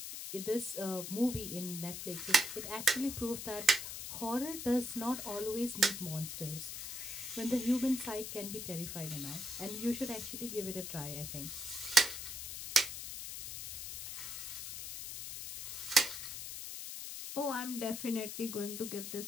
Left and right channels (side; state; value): left; noise; hiss, 7 dB below the sound